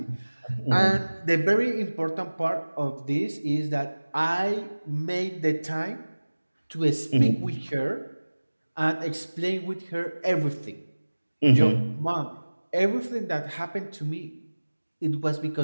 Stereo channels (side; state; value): both; inverted; correlation -1.00